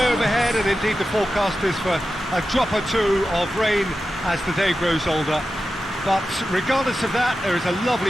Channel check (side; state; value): both; normal; correlation 0.92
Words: overhead, and indeed the forecast is for a drop or two of rain as the day grows older. But regardless of that, there is a